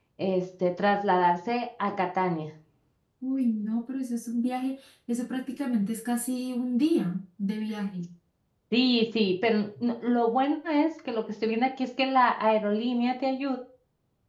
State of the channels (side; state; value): both; identical; correlation 1.00